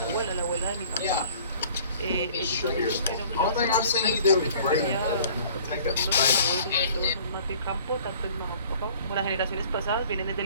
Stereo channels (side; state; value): both; inverted; correlation -0.51